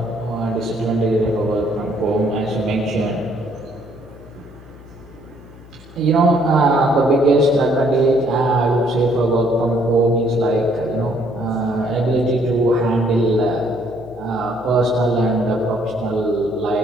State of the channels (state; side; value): noise; left; hum, 21 dB below the sound